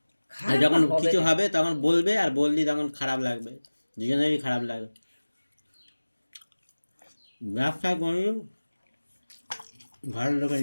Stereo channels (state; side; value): inverted; both; correlation -1.00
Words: আর যখন কিছু হবে তখন বলবে আর বললি তখন খারাপ লাগবে দুজনেরই খারাপ লাগবে ব্যবসা করি ঘরের লোকের